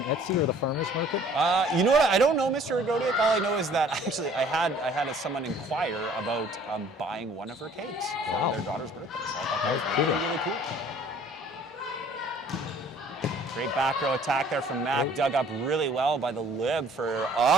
Etsy or the farmers market. You know what? I don't know, Mr. Agodiak. All I know is that actually I had someone inquire about buying one of her cakes for their daughter's birthday. So I thought that was really, really cool. Great back row attack there from Mac, dug up really well by the lib for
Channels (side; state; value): both; normal; correlation 0.54